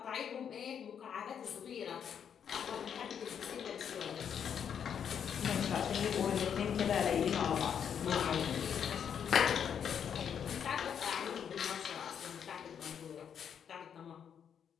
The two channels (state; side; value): quieter; right; 8.1 dB